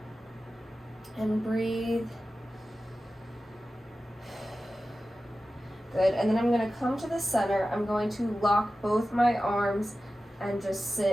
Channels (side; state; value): both; normal; correlation 0.94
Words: and breathe. Good. And then I'm going to come to the center. I'm going to lock both my arms and just